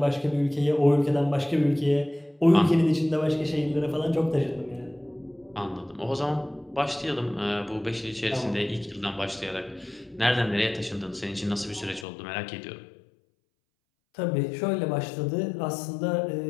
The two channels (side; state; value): right; drops out; at 12.1 s